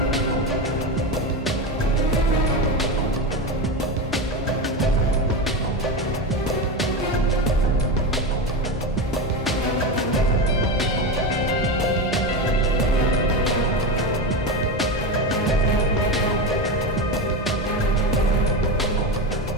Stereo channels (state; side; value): normal; both; correlation 0.18